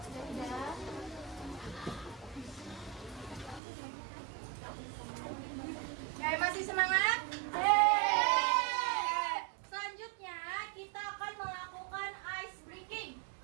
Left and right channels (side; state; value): left; drops out; at 3.6 s